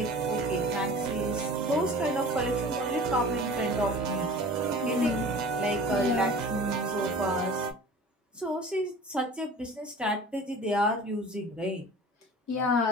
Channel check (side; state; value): both; normal; correlation 0.42